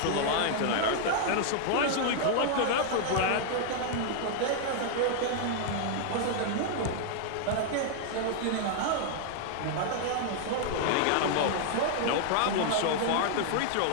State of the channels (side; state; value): both; different; correlation -0.01